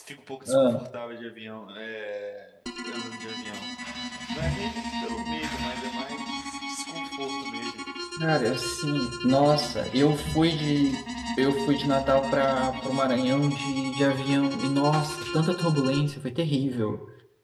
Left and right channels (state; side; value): identical; both; correlation 1.00